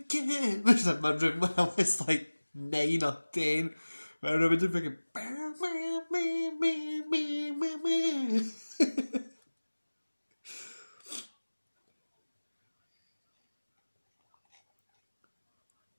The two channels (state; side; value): inverted; both; correlation -1.00